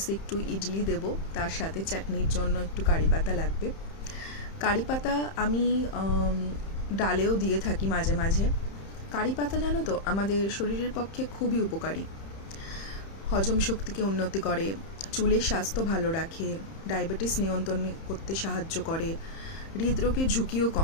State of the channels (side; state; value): right; late; 31 ms